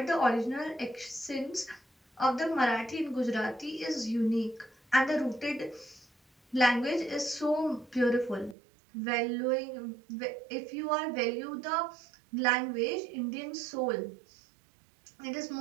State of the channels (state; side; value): drops out; left; at 8.6 s